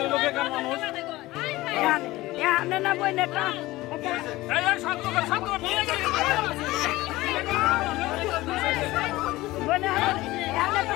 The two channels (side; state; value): right; quieter; 18.5 dB